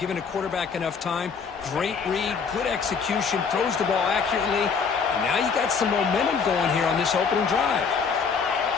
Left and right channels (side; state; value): right; quieter; 5.7 dB